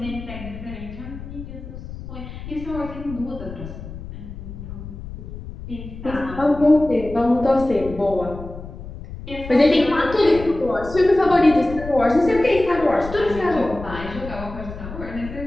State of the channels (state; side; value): noise; left; rumble, 11 dB below the sound